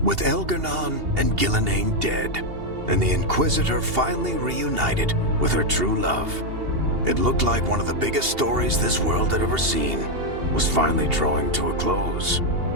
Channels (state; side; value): late; left; 2.8 ms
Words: With Elgar'nan and Gillenane dead, and the Inquisitor finally reunited with her true love, it looked like one of the biggest stories this world had ever seen was finally drawing to a close.